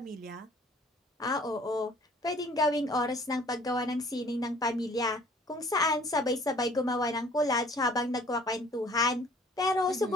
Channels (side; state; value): both; normal; correlation 0.54